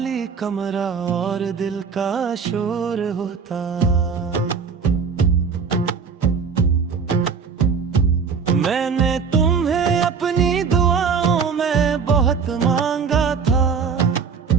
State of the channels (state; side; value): quieter; left; 5.9 dB